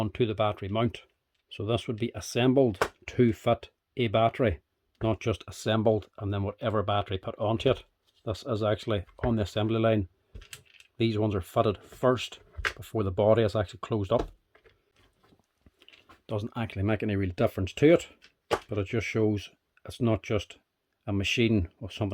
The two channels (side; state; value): both; identical; correlation 1.00